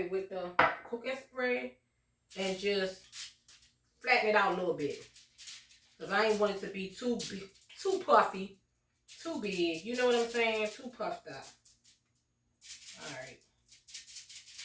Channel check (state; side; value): identical; both; correlation 1.00